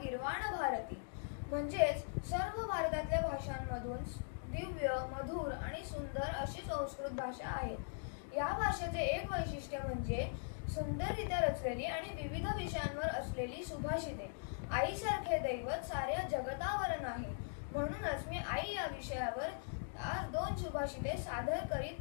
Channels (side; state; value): right; silent; digital silence